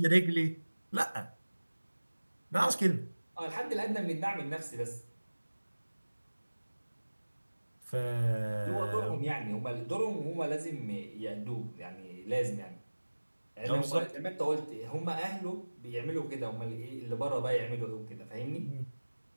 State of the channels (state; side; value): inverted; both; correlation -1.00